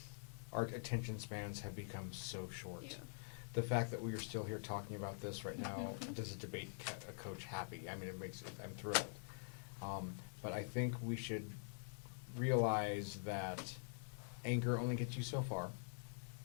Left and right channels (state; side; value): silent; right; digital silence